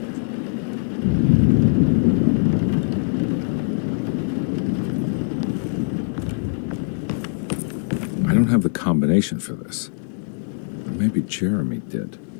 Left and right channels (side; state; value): right; silent; digital silence